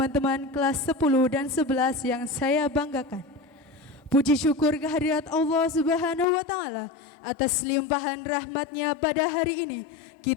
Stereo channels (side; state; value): right; drops out; at 6.2 s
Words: kelas 10 dan 11 yang saya banggakan. Puji syukur kehadirat Allah Subhanahu wa Ta'ala atas limpahan rahmatnya pada hari ini